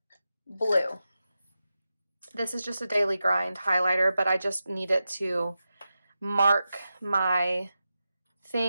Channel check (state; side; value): inverted; both; correlation -0.91